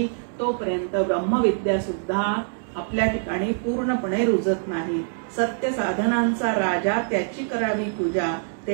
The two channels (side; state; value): left; silent; 62 dB below the other